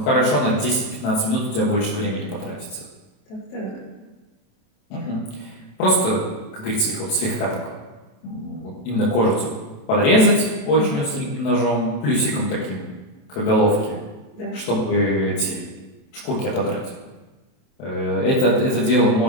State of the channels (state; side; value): late; right; 27 ms